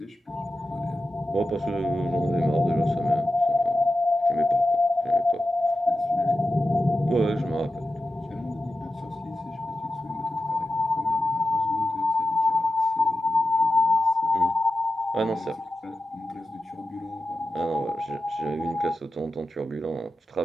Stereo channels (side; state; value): both; normal; correlation 0.92